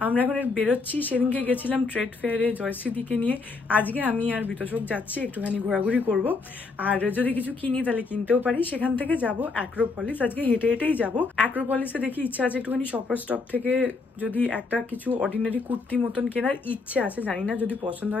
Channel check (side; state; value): right; quieter; 4.0 dB